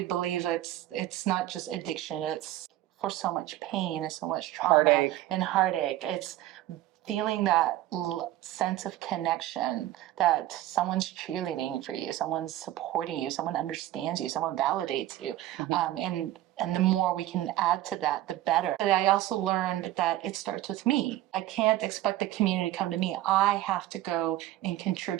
believe it's not just addiction, it's for so much pain and so much trauma Heartache. and heartache. It's feeling that sense of connection, that someone's cheerleading for you, someone's supporting you, someone understands you, someone validates you. And the more we can add to that, the better. But I also learned that it starts with me. I can't expect the community to come to me. I have to go and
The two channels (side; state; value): left; quieter; 14.5 dB